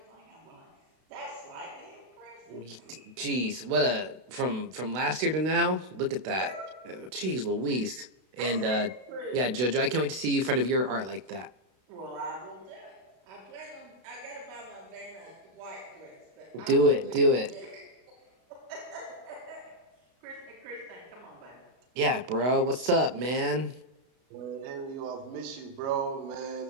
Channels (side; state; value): left; late; 32 ms